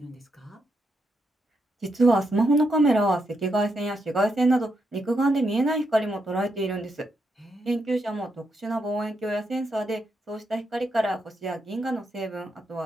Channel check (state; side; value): normal; both; correlation 0.81